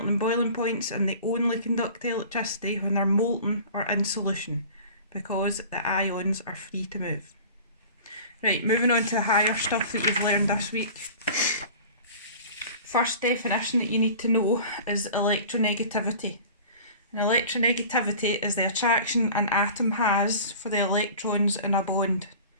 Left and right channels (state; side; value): inverted; both; correlation -0.41